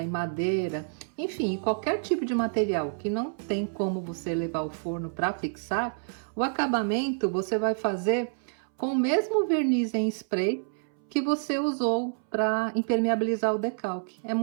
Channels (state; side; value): silent; left; 59 dB below the other